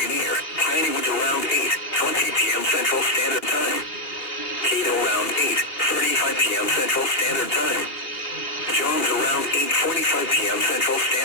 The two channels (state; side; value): late; right; 2.5 ms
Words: near Piney Woods around 8:20 p.m. Central Standard Time. Cato around 8:35 p.m. Central Standard Time. Johns around 8:45 p.m. Central